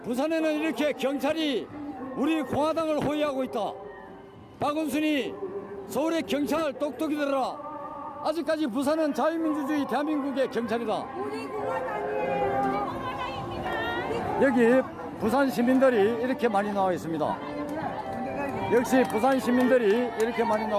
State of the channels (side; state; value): both; identical; correlation 1.00